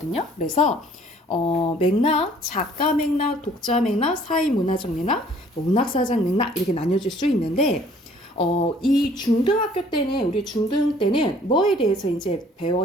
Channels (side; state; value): both; normal; correlation 0.57